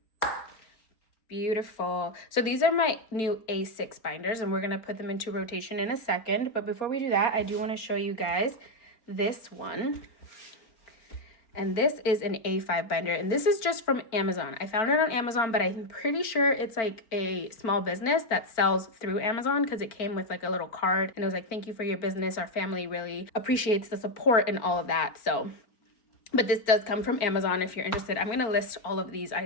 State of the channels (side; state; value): right; late; 4.3 ms